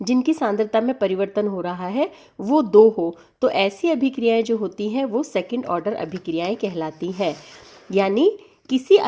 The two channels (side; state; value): both; identical; correlation 1.00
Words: जिनकी सांद्रता में परिवर्तन हो रहा है वो 2 हो, तो ऐसी अभिक्रियाएं जो होती हैं वो सेकंड ऑर्डर अभिक्रियाएं कहलाती हैं। यानी किसी